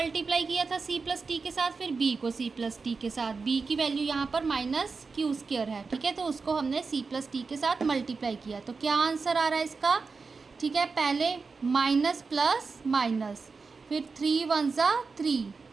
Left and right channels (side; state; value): left; quieter; 4.6 dB